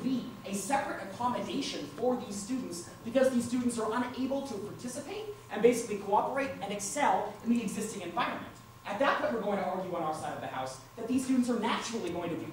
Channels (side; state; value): both; identical; correlation 1.00